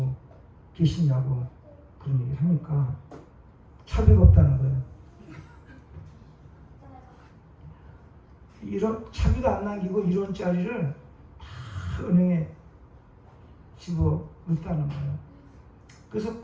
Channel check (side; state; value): both; identical; correlation 1.00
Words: 계시냐고 그런 얘기를 하니까 차비가 없다는 거예요. 이런 차비도 안 남기고 1원짜리를 다 은행에 집어 넣었다는 거예요. 그래서